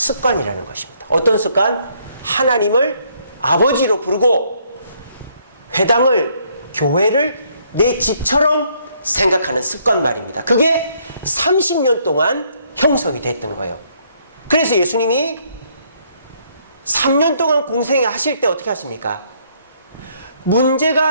것입니다. 어떤 습관? 하나님을 아버지로 부르고 회당을, 교회를 내 집처럼 생각하는 습관 말입니다. 그게 30년 동안 형성이 됐던 거예요. 그래서 예수님이 3년 동안 공생하실 때 어떻게 하십니까?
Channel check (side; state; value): both; inverted; correlation -0.68